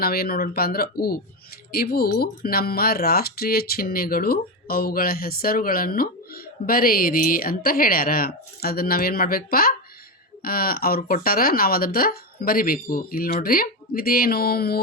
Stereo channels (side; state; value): both; normal; correlation 0.13